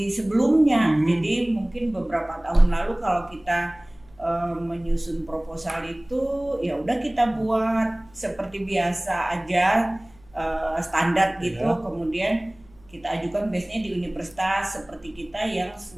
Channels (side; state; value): left; noise; hum, 28 dB below the sound